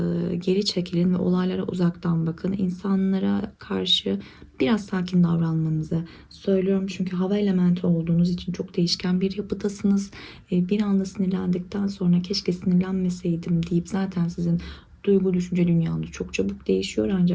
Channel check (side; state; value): both; identical; correlation 1.00